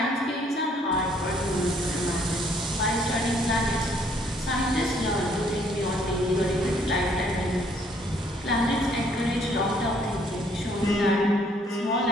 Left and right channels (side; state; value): both; normal; correlation 0.65